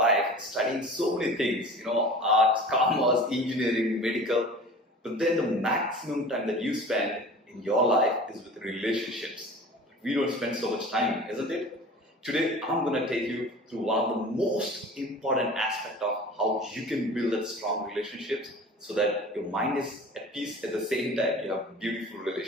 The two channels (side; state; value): both; normal; correlation 0.40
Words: studying so many things, arts, commerce, engineering, medical, but then the maximum time that you spend in your life is with relationships. We don't spend so much time, isn't it? Today, I'm going to take you through one of the most important aspects of how you can build that strong relationships so that your mind is at peace at the same time you have beautiful